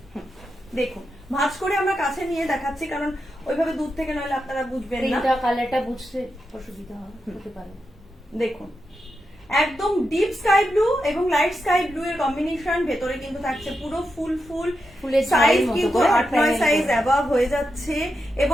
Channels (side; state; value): both; normal; correlation 0.87